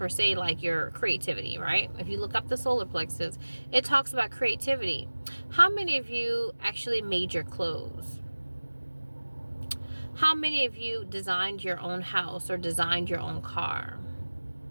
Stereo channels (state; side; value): inverted; both; correlation -1.00